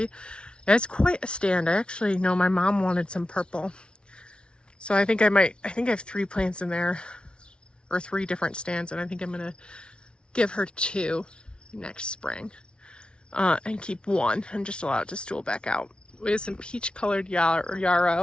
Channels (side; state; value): right; late; 0.057 ms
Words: And it's quite a stand. I actually know my mom wanted some purple. So I think I have 3 plants in there, or 3 different stands, and I think I'm gonna give her 2 next spring and keep 1 and just allow it to stool back out. We have some peach colored